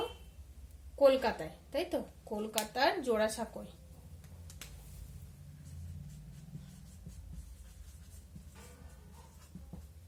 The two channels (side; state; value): both; identical; correlation 1.00